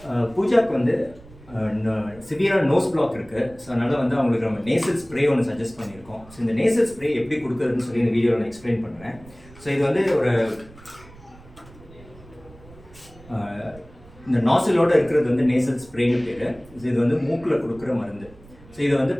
பூஜாக்கு வந்து சிவியராக nose black இருக்குது. So அதனால் வந்து அவங்களுக்கு நம்ம நேசல் ஸ்ப்ரே ஒன்று சஜஸ்ட் பண்ணியிருக்கோம். ஸோ இந்த நேசல் ஸ்ப்ரே எப்படி கொடுக்குறதுன்னு சொல்லி இந்த வீடியோவில் நான் எக்ஸ்பிளைன் பண்ணுறேன். ஸோ இது வந்து ஒரு இந்த நாசிலோடு இருக்கிறது வந்து நேசல் ஸ்ப்ரேன்னு பேர். ஸோ இது வந்து மூக்கில் கொடுக்குற மருந்து. ஸோ இதை வந்து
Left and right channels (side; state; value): right; noise; rumble, 23 dB below the sound